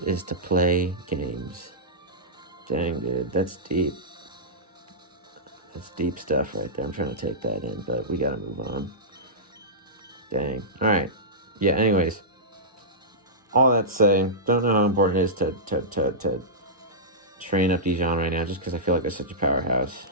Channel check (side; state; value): both; normal; correlation -0.15